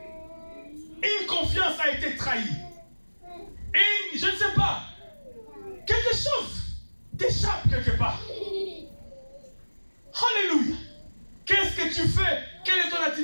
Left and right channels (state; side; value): inverted; both; correlation -1.00